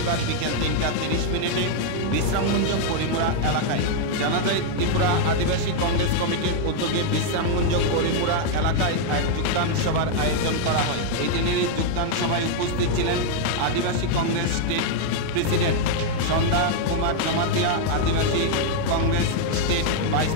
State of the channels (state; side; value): different; both; correlation -0.01